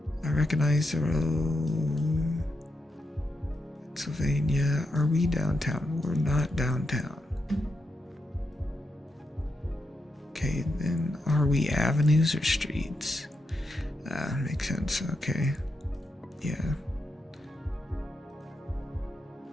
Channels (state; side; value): normal; both; correlation 0.85